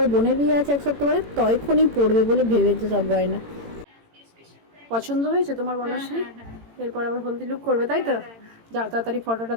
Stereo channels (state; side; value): late; left; 18 ms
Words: বোনের বিয়ে আছে এক সপ্তাহ পরে, তখনই পড়বে বলে ভেবেছে সব গয়না। পছন্দ হয়েছে তোমার বনশ্রী? এরপর আবার হলদি লুক করবে, তাই তো? যাও তাড়াতাড়ি ফটোটা